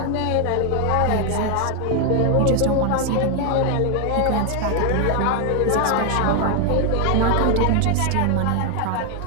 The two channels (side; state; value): both; different; correlation 0.00